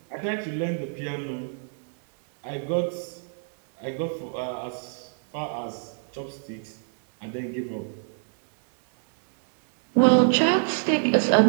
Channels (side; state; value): left; silent; 61 dB below the other